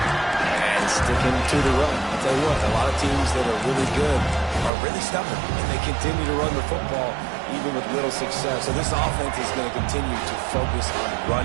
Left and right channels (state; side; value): drops out; left; at 4.7 s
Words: And sticking to the run. I'll tell you what, a lot of teams that are really good are really stubborn, and they continue to run the football even with little success. So this offense is going to continue to focus on